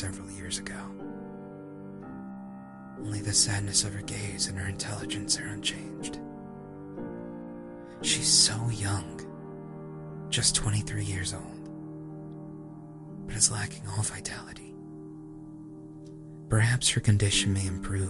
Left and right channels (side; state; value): both; identical; correlation 1.00